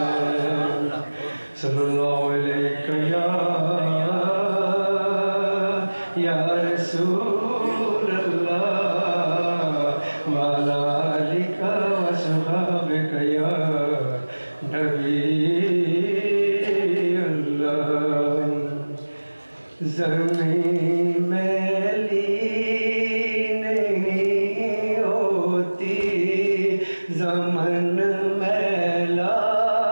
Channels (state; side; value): inverted; both; correlation -1.00